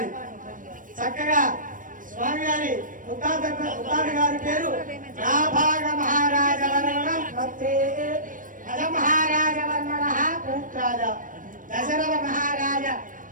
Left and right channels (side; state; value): left; late; 0.39 ms